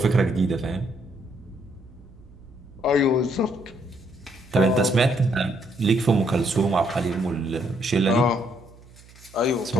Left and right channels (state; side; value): noise; right; hum, 23 dB below the sound